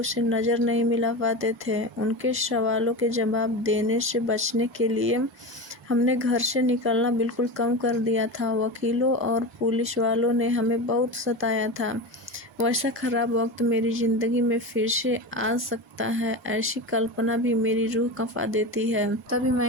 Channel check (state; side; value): normal; both; correlation 0.24